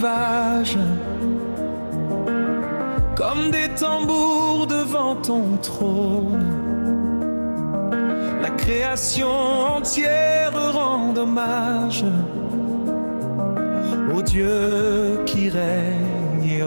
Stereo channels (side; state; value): both; inverted; correlation -1.00